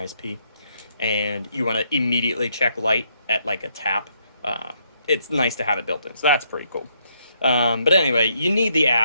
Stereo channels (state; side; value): inverted; both; correlation -0.73